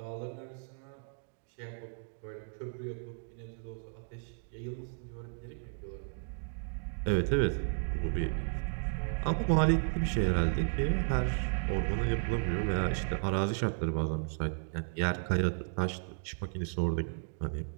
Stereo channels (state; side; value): silent; left; 55 dB below the other